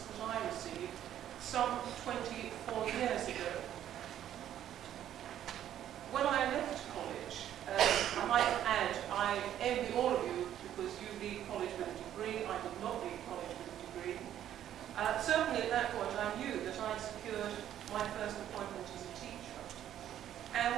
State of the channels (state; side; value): quieter; left; 11.1 dB